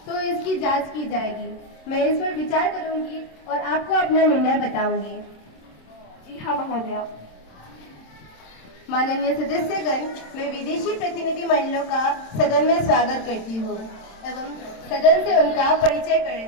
तो इसकी जांच की जाएगी। मैं इस पर विचार करूंगी और आपको अपना निर्णय बताऊंगी। जी हाँ महोदया। माननीय सदस्यगण, मैं विदेशी प्रतिनिधि मंडलों का सदन में स्वागत करती हूँ एवं सदन से उनका परिचय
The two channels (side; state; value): right; late; 27 ms